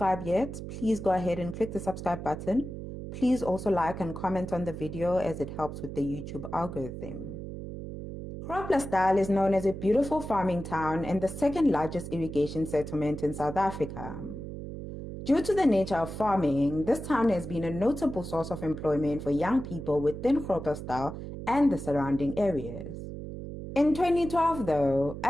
yet, please go ahead and click the subscribe button. Please also like and comment on the video as it helps with the YouTube algorithm. Groblersdal is known as a beautiful farming town and the second largest irrigation settlement in South Africa. Due to the nature of farming, this town has been a notable source of employment for young people within Groblersdal and the surrounding areas. In 2012, though,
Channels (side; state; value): right; noise; hum, 9 dB below the sound